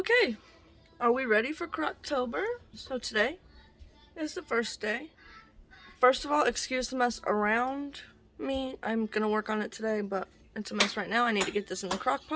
Okay, are we ready for Crocktober? So today is the first day. First of all, excuse the mess around me. I'm gonna work on it today, but it's a mess right now. I need to get this in the crock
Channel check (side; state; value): both; identical; correlation 1.00